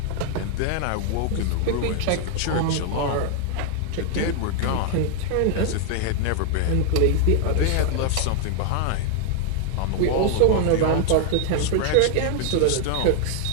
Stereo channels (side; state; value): both; different; correlation 0.00